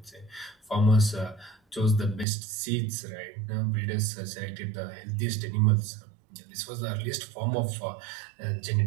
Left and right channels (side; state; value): left; drops out; at 2.2 s